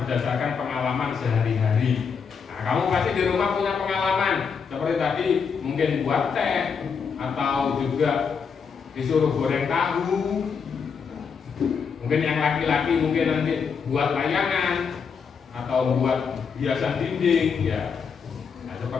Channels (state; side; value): quieter; right; 6.1 dB